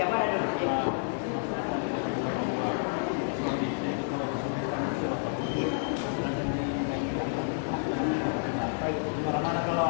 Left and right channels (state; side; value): silent; right; digital silence